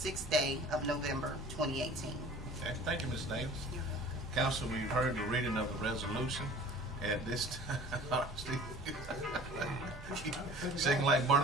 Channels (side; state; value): both; normal; correlation 0.45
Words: 6th day of November 2018. Okay, thank you, Ms. Davis. Council, we've heard the reading of the resolution. At this time, Steve, shaking like